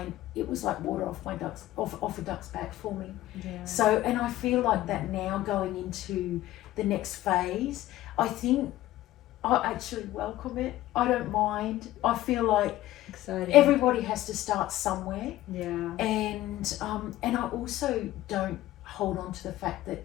it was like water off a duck's back for me. So, and I feel like that now going into the next phase, I think I actually welcome it. I don't mind. I feel like everybody has to start somewhere. And I also don't hold on to the fact that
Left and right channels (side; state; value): right; quieter; 15.3 dB